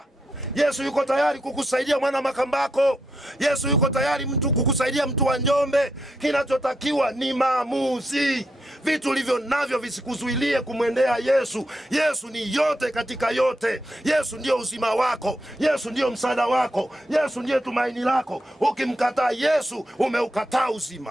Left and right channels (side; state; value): both; normal; correlation 0.82